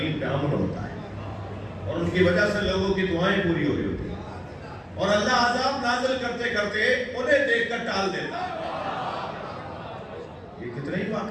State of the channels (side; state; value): both; identical; correlation 1.00